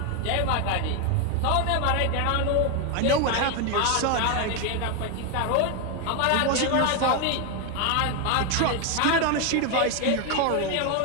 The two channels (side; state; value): both; different; correlation 0.01